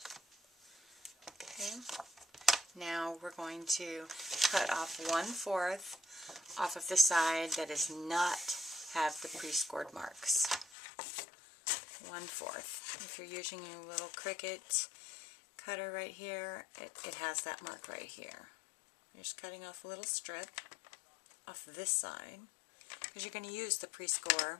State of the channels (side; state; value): right; drops out; at 10.7 s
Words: Okay. Now we're going to cut off 1/4 off of the side that does not have the pre-scored marks. 1/4. If you're using your little Cricut cutter right here, it has that mark right here. You're just cutting off a little strip off this side, because you're going to use the